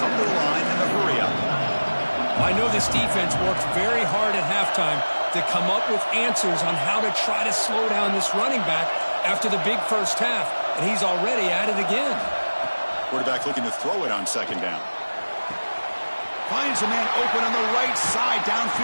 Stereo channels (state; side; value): inverted; both; correlation -1.00